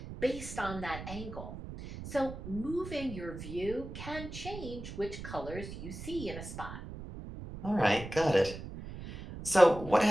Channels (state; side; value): noise; right; rumble, 10 dB below the sound